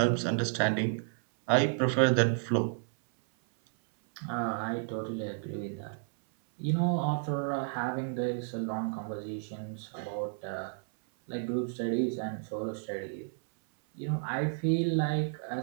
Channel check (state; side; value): silent; left; 57 dB below the other